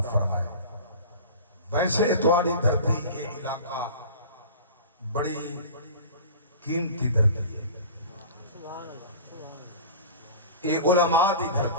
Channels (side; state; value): both; inverted; correlation -0.37